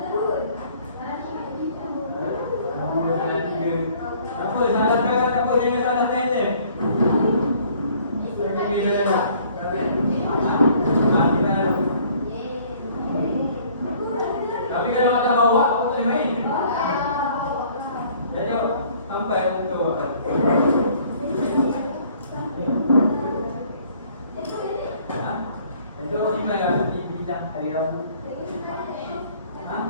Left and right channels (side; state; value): both; inverted; correlation -0.57